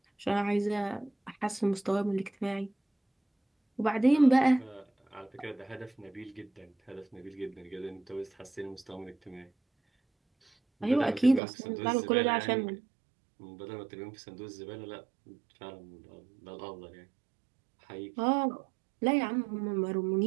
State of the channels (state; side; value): drops out; left; at 11.4 s